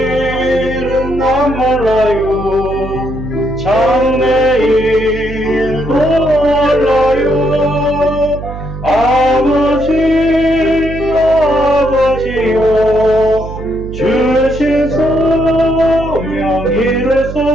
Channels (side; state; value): right; noise; hum, 10 dB below the sound